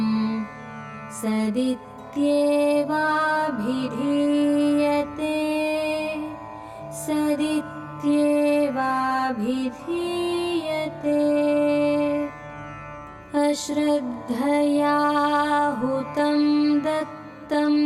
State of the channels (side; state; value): both; identical; correlation 1.00